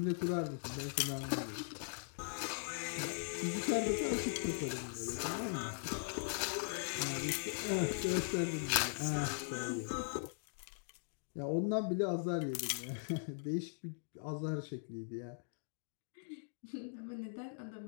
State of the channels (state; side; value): silent; right; digital silence